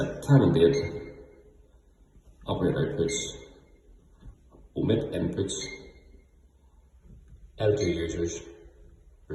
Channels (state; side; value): identical; both; correlation 1.00